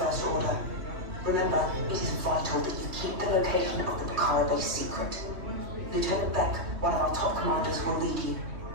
Order. Remember, it is vital that you keep the location of the Pucara base secret. Lieutenant Beck, one of our top commanders, will lead you.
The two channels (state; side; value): late; left; 3.2 ms